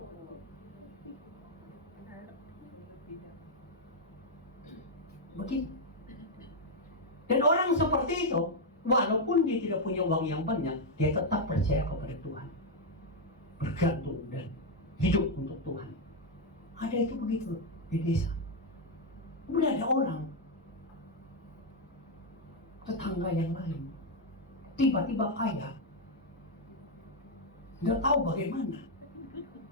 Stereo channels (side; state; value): both; normal; correlation 0.01